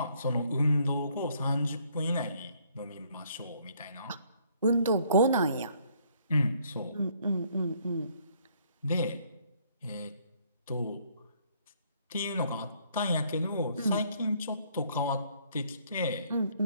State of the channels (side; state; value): both; inverted; correlation -0.65